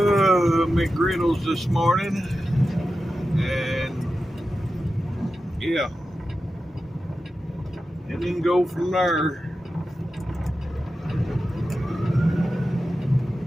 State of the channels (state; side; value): normal; both; correlation 0.92